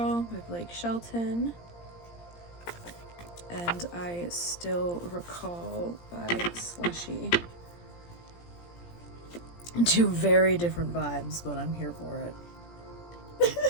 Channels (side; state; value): right; late; 17 ms